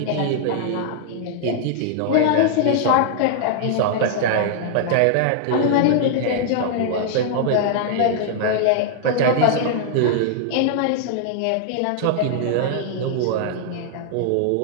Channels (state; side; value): different; both; correlation -0.01